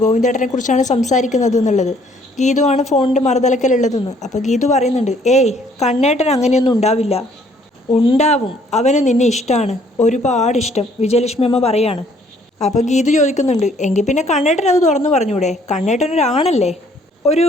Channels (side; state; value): both; normal; correlation 0.62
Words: ഗോവിന്ദേട്ടനെ കുറിച്ചാണ് സംസാരിക്കുന്നത് എന്നുള്ളത്. ഗീതുവാണ് ഫോണിൻ്റെ മറുതലക്കലുള്ളതെന്ന്. അപ്പോൾ ഗീതു പറയുന്നുണ്ട്, ഏയ് കണ്ണേട്ടൻ അങ്ങനെയൊന്നും ഉണ്ടാവില്ല. ഉണ്ടാവും, അവന് നിന്നെ ഇഷ്ടമാണ്, ഒരുപാട് ഇഷ്ടം, വിജയലക്ഷ്മി അമ്മ പറയാണ്. അപ്പോൾ ഗീതു ചോദിക്കുന്നുണ്ട്, എങ്കിൽ പിന്നെ കണ്ണേട്ടൻ അത് തുറന്നു പറഞ്ഞൂടെ? കണ്ണേട്ടനൊരാണല്ലേ? ഒരു